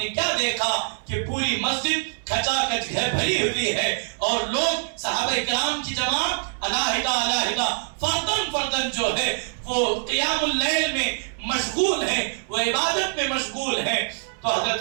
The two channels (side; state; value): left; silent; digital silence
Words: کیا دیکھا کہ پوری مسجد کھچا کچ بھری ہوئی ہے اور لوگ صحابہ کرام کی جماعت علیحدہ فردن جو ہے وہ قیام اللیل میں مشغول ہے، وہ عبادت میں مشغول ہے۔ تو